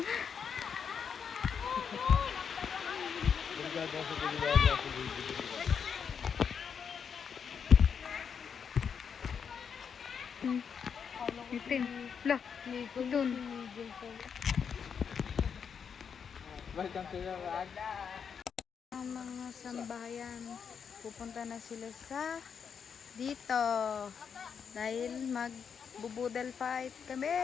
Itin. Look! Itun. Ang mga sambahayan, pupunta na sila sa dito dahil magbubudel fight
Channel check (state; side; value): quieter; right; 6.9 dB